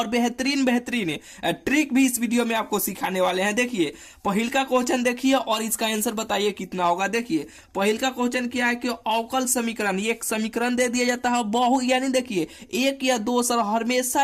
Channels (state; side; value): identical; both; correlation 1.00